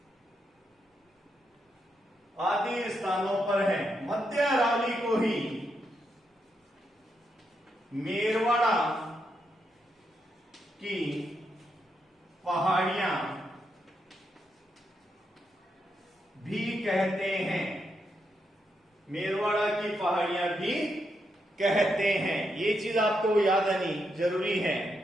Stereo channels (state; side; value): normal; both; correlation 0.82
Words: आदि स्थानों पर हैं। मध्य अरावली को ही मेरवाड़ा की पहाड़ियां भी कहते हैं, मेरवाड़ा की पहाड़ियां भी कहते हैं। ये चीज आपको याद आनी जरूरी है।